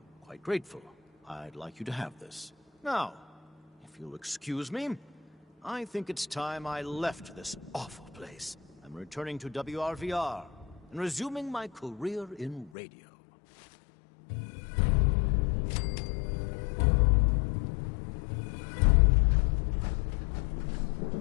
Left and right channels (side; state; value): right; drops out; at 12.7 s